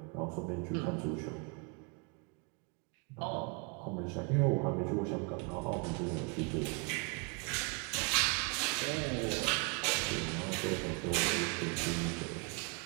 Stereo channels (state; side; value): quieter; left; 32.2 dB